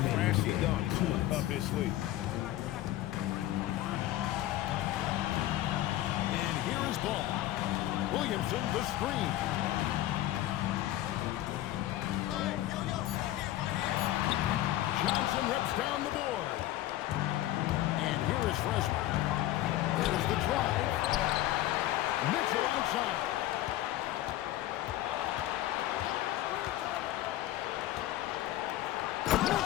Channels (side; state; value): right; quieter; 14.6 dB